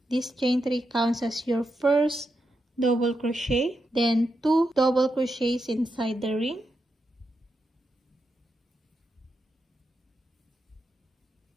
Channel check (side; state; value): both; normal; correlation 0.85